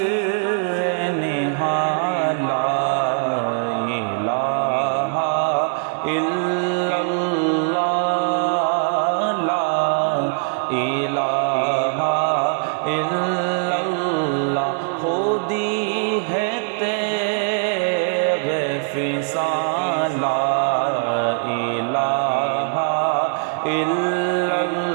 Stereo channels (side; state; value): left; silent; 65 dB below the other